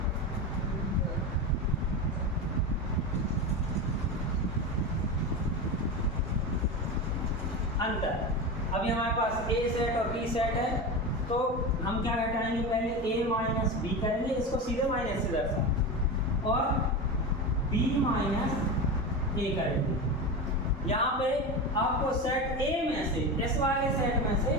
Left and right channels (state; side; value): normal; both; correlation 0.22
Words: अंतर। अभी हमारे पास ए सेट और बी सेट है, तो हम क्या घटाएंगे, पहले a माइनस बी करेंगे, इसको सीधे माइनस से दर्शा, और b माइनस ए करेंगे। यहाँ पे आपको सेट ए में से, इस वाले सेट में से